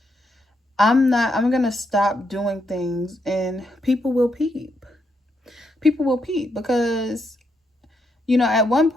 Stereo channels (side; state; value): both; normal; correlation 0.79